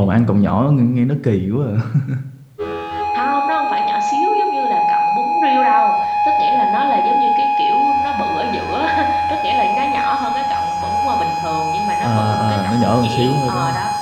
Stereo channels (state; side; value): identical; both; correlation 1.00